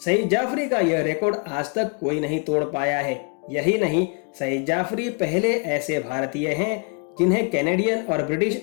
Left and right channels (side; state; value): right; quieter; 35.7 dB